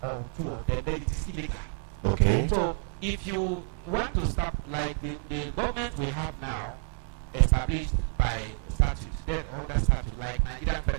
or two of them, then it is illegal. Okay. So if you want to stop, like the government we have now, established by statute, there's under statute, like Nigerian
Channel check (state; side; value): silent; left; 59 dB below the other